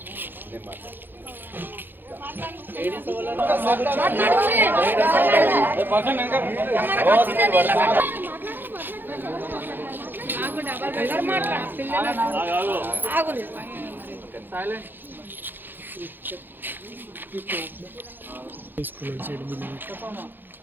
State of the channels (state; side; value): late; left; 0.095 ms